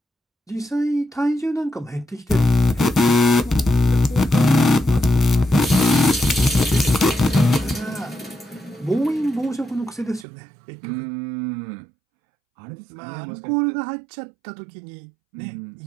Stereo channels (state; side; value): drops out; left; at 10.2 s